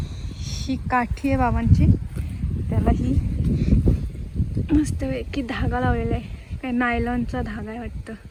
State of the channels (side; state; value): both; identical; correlation 1.00